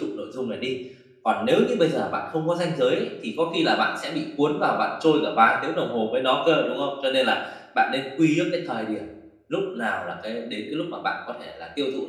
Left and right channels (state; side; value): identical; both; correlation 1.00